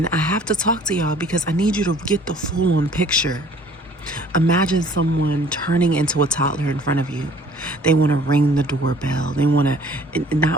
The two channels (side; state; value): both; normal; correlation 0.54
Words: I have to talk to y'all because I need you to get the full-on picture. Imagine someone turning into a toddler in front of you. They want to ring the doorbell. They want to,